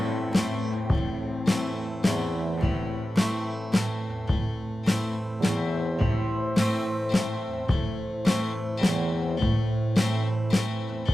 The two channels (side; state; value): both; normal; correlation 0.93